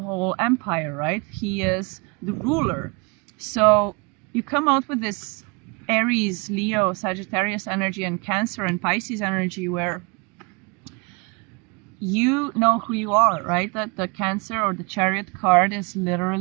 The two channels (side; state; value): left; quieter; 30.8 dB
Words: empire, right? He is the ruler. So you come out with this Aries, Leo, Sagittarius energy and Cancer and Pisces energy, where you know who you are, right? That the Cancer or the Chariot card is